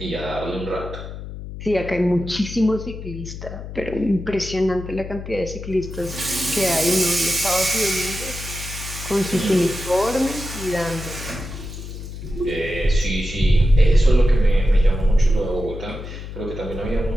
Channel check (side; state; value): left; noise; hum, 10 dB below the sound